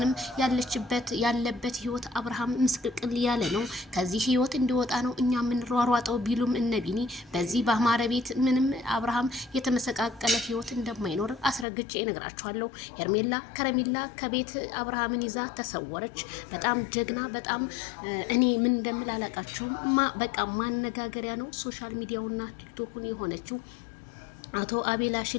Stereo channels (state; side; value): drops out; right; at 11.7 s